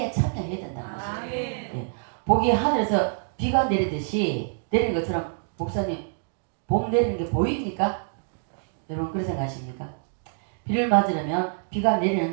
참여해야 된다는 것입니다. 예. 복이 하늘에서 비가 내리듯이 내리는 것처럼 목사님 복 내리는 게 보입니까? 여러분 그렇게 생각하십니까? 비를 맞으려면 비가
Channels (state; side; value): silent; left; digital silence